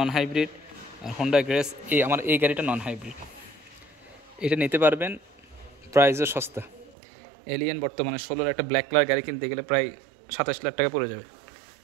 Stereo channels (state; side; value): drops out; left; at 7.0 s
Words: হাইব্রিড, আর হোন্ডা গ্রেস আমার এই গাড়িটা নন হাইব্রিড, এটা নিতে পারবেন। প্রাইসও সস্তা। এলিয়েন বর্তমানে 16-র একটা ব্ল্যাক কালার গাড়ি কিনতে গেলে প্রায় 27 লাখ টাকা পড়ে যাবে।